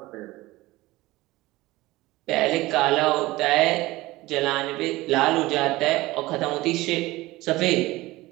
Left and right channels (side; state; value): left; quieter; 19.1 dB